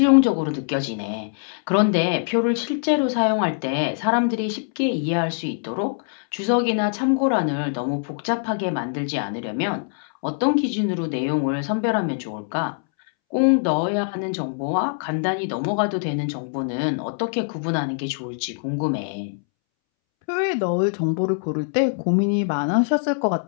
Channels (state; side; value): silent; right; 63 dB below the other